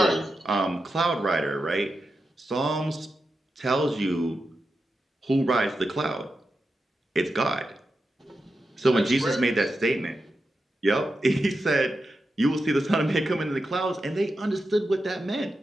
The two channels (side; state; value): both; normal; correlation 0.89